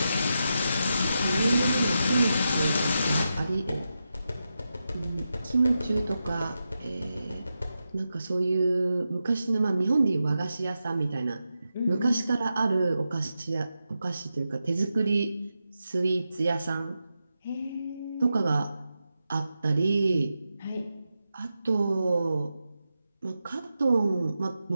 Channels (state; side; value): inverted; both; correlation -0.89